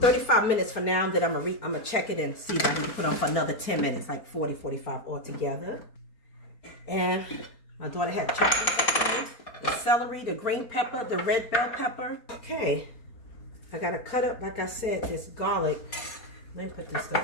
minutes for now. Then I'm going to check it and see if I can put on for another 10 minutes, like 40, 45 altogether. And my daughter had chocolate. the celery, the green pepper, the red bell pepper. Okay, I gotta cut up, like I said, this garlic. Let me put this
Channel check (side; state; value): right; late; 4.4 ms